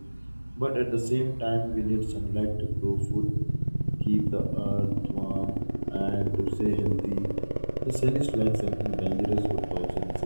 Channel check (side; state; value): both; inverted; correlation -1.00